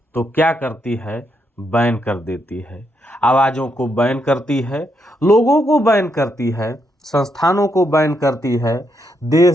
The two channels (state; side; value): normal; both; correlation 0.79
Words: तो क्या करती है? बैन कर देती है। आवाज़ों को बैन करती है, लोगों को बैन करती है, संस्थानों को बैन करती है,